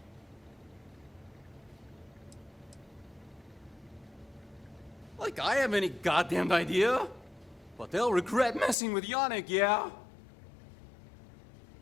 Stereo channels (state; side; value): drops out; right; at 8.8 s